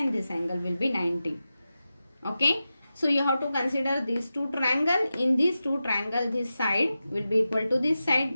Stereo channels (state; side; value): inverted; both; correlation -0.93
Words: this angle will be 90. Okay. So, you have to consider these two triangles. In these two triangles, this side will be equal to this